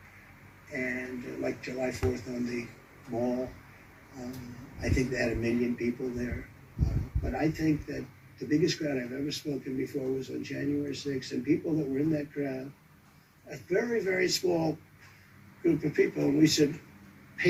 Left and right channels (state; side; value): identical; both; correlation 1.00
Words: And like July 4th on the mall, I think they had 1 million people there. But I think that the biggest crowd I've ever spoken before was on January 6th. And people that were in that crowd, a very, very small group of people, and we said